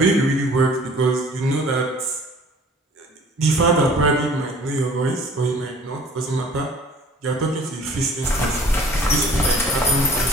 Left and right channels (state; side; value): normal; both; correlation 0.51